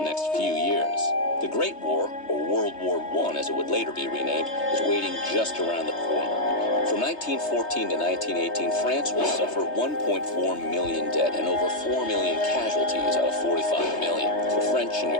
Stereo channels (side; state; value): right; late; 3.3 ms